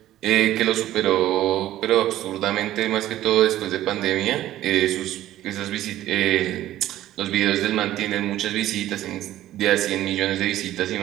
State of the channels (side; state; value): left; quieter; 13.8 dB